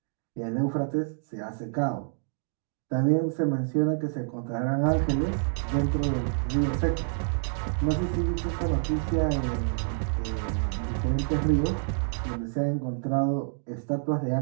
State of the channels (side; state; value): left; silent; digital silence